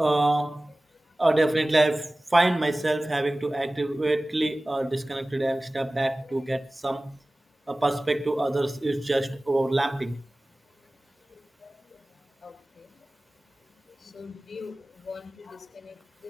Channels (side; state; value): both; normal; correlation 0.98